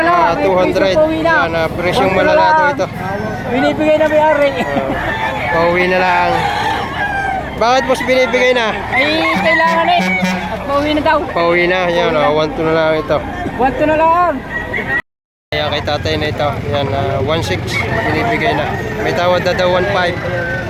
Yan ah, presyong malalado ito. Binibigay na may-ari. Pauwi na lang. Bakit boss binibigay na? Ay, kailangan eh. At pauwi na daw. Pauwi na, yan ah, 1 to na lang ito. 1 to na lang. Kaya kay tatay na ito, yan 1.6 binibigay na. May tawad na daw 1.5.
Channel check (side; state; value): both; identical; correlation 1.00